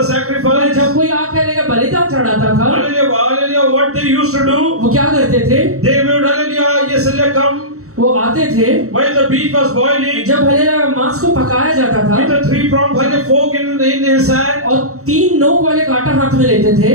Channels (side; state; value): left; late; 0.64 ms